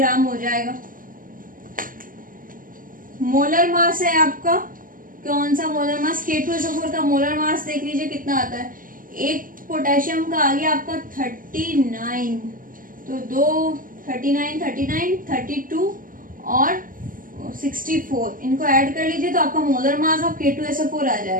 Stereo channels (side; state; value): left; late; 0.40 ms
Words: हो जाएगा। मोलर मास है आपका, कौन सा मोलर मास, K2SO4 का मोलर मास देख लीजिए कितना आता है। एक पोटेशियम का आ गया आपका 39, तो 2 39 39 32 और 64, इनको ऐड कर लीजिए तो आपका मोलर मास ऑफ K2SO4 आ